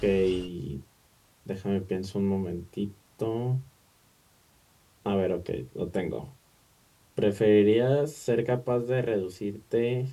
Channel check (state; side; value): identical; both; correlation 1.00